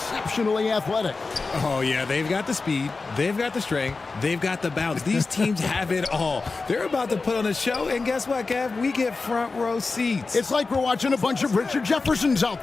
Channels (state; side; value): quieter; right; 4.0 dB